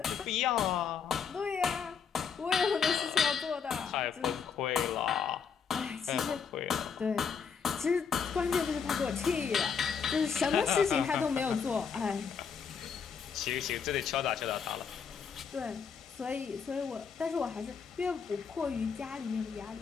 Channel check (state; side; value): quieter; right; 6.4 dB